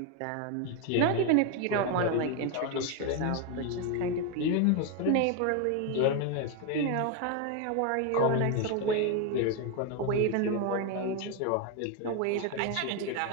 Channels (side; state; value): both; different; correlation 0.01